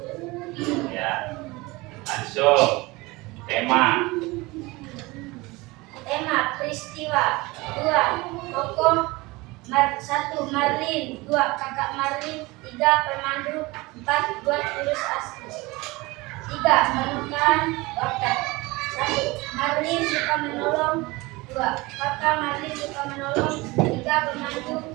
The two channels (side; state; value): left; quieter; 22.7 dB